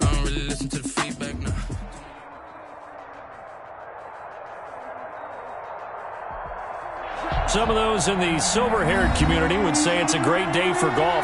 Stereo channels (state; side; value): identical; both; correlation 1.00